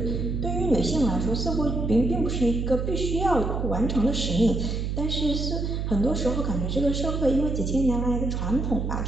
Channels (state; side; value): noise; right; hum, 2 dB below the sound